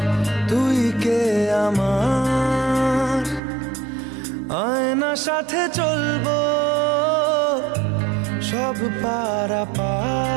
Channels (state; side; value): drops out; left; at 3.4 s